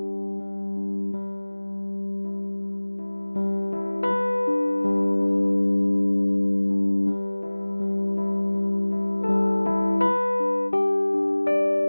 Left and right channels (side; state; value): both; inverted; correlation -1.00